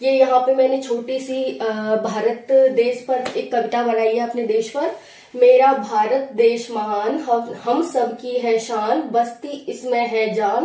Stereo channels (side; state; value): both; identical; correlation 1.00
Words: ये यहाँ पे मैंने छोटी सी भारत देश पर एक कविता बनाई है, अपने देश पर। मेरा भारत देश महान, हम सब की है शान, बस्ती इसमें है